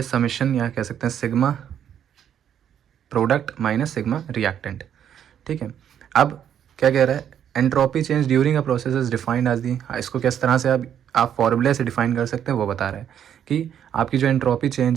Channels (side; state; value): left; quieter; 9.4 dB